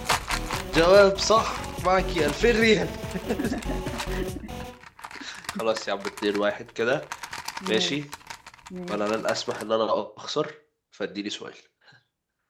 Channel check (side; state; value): both; identical; correlation 1.00